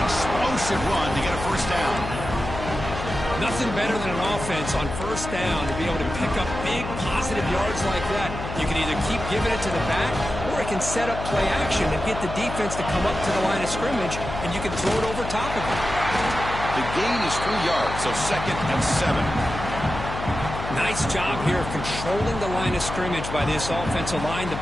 explosive run to get a first down. Nothing better than an offense on first down to be able to pick up big positive yards like that. You can either keep giving it to the back, or it can set up play action and get the defense to come up to the line of scrimmage, and you can throw it over top of it. The gain is 3 yards, so 2nd and 7. Nice job here of controlling the line of scrimmage by this offensive line.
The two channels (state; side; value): noise; left; hum, 7 dB below the sound